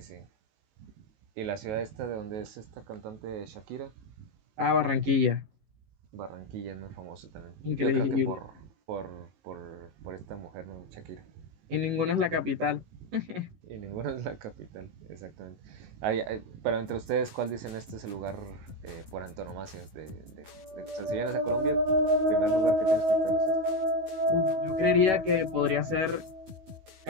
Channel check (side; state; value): left; late; 19 ms